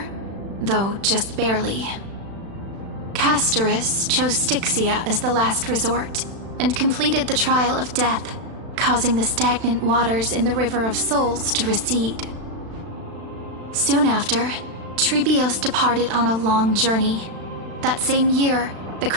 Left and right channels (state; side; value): late; left; 36 ms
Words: though just barely. Castorus chose Styxia as the last resort, and completed the trial of death, causing the stagnant waters in the River of Souls to recede. Soon after, Trebios departed on a long journey. That same year, the